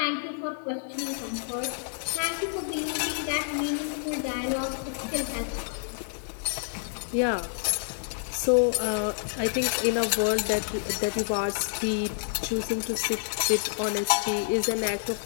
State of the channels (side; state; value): right; silent; digital silence